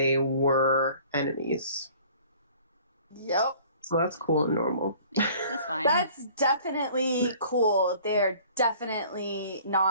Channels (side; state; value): both; inverted; correlation -0.51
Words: were enemies. Yep. So that's cool and normal. Yeah, that's fine. That's definitely cool. They're definitely